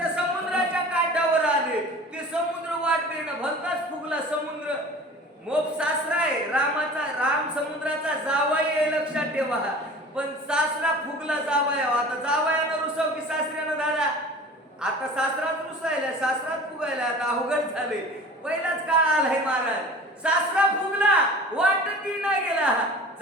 समुद्राच्या काठावर आले. ते समुद्र वाट देणं भलताच फुगला समुद्र. मोप सासरा आहे रामाचा, राम समुद्राचा जावई आहे लक्षात ठेवा. पण सासरा फुगला जावया. आता जावयानं रुसव की सासऱ्यानं दादा. आता सासराच रुसायला, सासराच फुगायला, आता अवघड झाले. पहिलाच काळ आलाय महाराज. सासरा फुगला, वाटती नाही गेला.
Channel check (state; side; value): normal; both; correlation 0.41